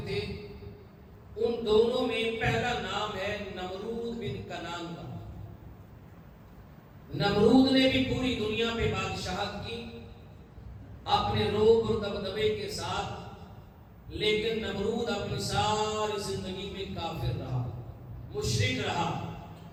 تھے، ان دونوں میں پہلا نام ہے نمرود بن کنان کا۔ نمرود نے بھی پوری دنیا پہ بادشاہت کی اپنے روب اور دبدبے کے ساتھ، لیکن نمرود اپنی ساری زندگی میں کافر رہا، مشرک رہا،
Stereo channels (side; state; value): both; identical; correlation 1.00